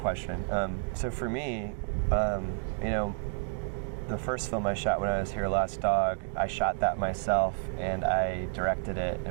So for me, the first film I shot when I was here, Lost Dog, I shot that myself and I directed it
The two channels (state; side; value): silent; left; digital silence